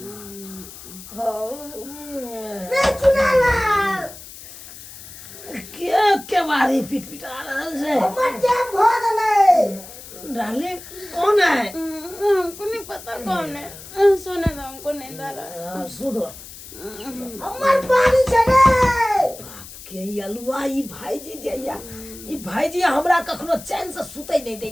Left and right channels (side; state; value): left; noise; hiss, 16 dB below the sound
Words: रे चुनाव क्या बारी पिटपिटा रहल छै? हमर जे भोग लगे डाले कौन है? हमको नहीं पता कौन है। सोने दो, हमको नींद आ रहा है। सुनो हमर पानी छले बाप के अलुआ ई भाईजी जइया, ई भाईजी हमरा कखनो चैन से सुतै नहीं